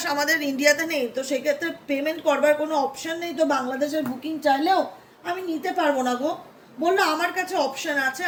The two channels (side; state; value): both; identical; correlation 1.00